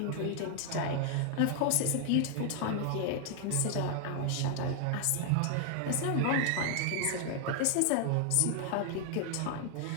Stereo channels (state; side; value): different; both; correlation 0.00